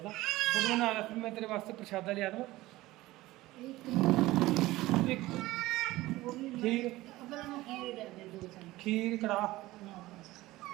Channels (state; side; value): quieter; left; 18.0 dB